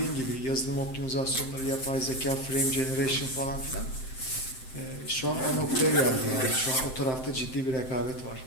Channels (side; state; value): right; late; 7.7 ms